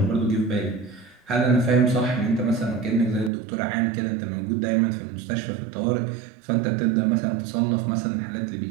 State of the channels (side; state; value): left; drops out; at 3.3 s